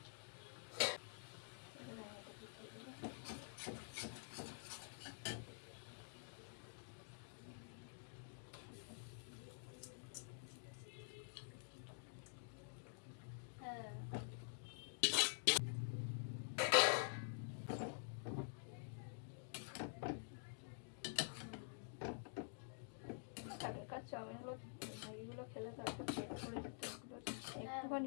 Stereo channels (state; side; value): silent; right; digital silence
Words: হ্যাঁ চাউমিনগুলো ম্যাগিগুলো খেলে তো একটা পেট করে যেত,